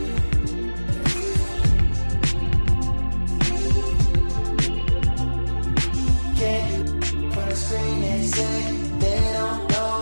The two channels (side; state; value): both; inverted; correlation -1.00